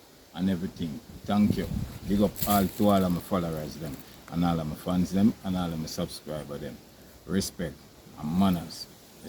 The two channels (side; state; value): both; identical; correlation 1.00